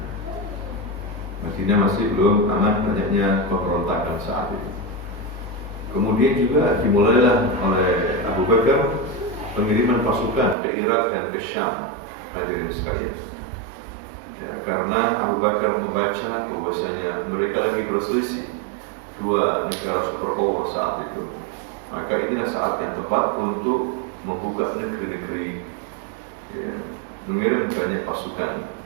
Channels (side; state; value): left; drops out; at 10.6 s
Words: Madinah masih belum aman, banyaknya pemberontakan saat itu. Kemudian juga dimulailah oleh Abu Bakar pengiriman pasukan ke Irak dan ke Syam, hadirin sekalian. Ya, karena Abu Bakar membaca bahwasanya mereka lagi berselisih dua negara superpower saat itu, maka inilah saat yang tepat untuk membuka negeri-negeri, ya, mengirim banyak pasukan.